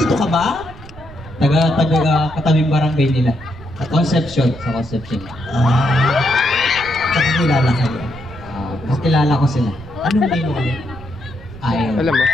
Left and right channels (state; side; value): noise; right; rumble, 17 dB below the sound